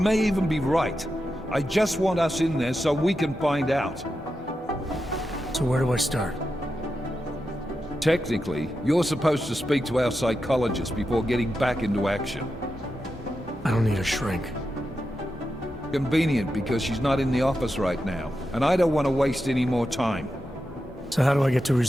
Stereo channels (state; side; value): normal; both; correlation 0.89